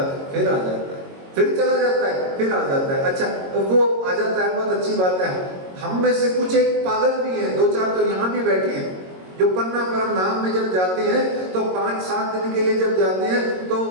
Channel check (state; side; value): late; left; 22 ms